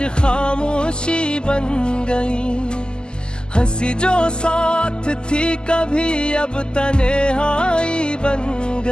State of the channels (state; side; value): late; right; 0.047 ms